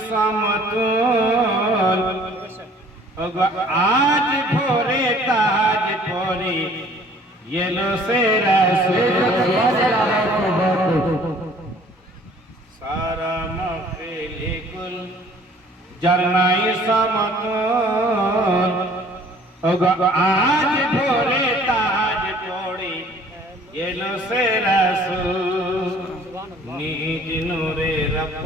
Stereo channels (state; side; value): normal; both; correlation 0.54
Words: সমতুল আজ ভোরে তাজ পরি এলো সে রাসূল সারা মাহফিলে কুল যার নাই সমতুল আজ ভোরে তাজ পরি এলো সে রাসূল নিজ নূরে